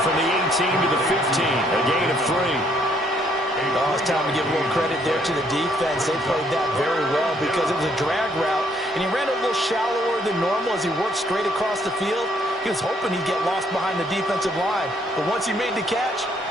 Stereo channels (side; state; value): both; normal; correlation 0.68